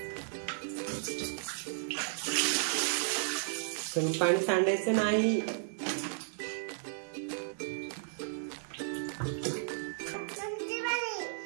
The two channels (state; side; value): silent; left; digital silence